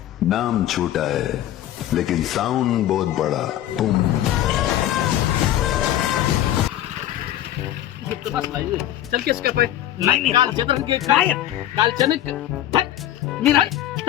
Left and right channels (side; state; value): right; quieter; 12.7 dB